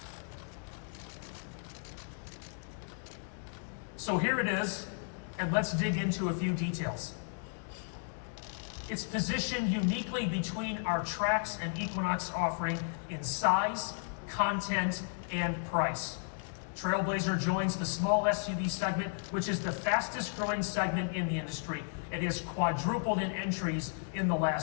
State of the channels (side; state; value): right; silent; digital silence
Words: So here it is, and let's dig into a few details. It's positioned uniquely between our Trax and Equinox offering in size, content, and price. Trailblazer joins the small SUV segment, which is the fastest growing segment in the industry. It has quadrupled in entries in the